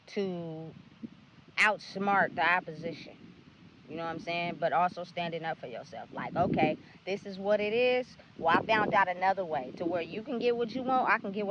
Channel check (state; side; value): identical; both; correlation 1.00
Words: to outsmart the opposition. You know what I'm saying? But also standing up for yourself. Like, okay, this is what it is. Well, I found out another way to where you can get what you want. I can get